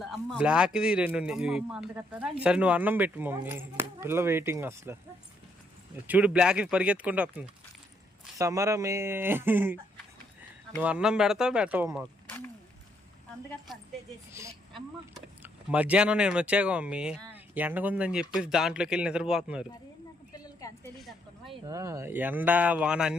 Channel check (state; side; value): normal; both; correlation 0.73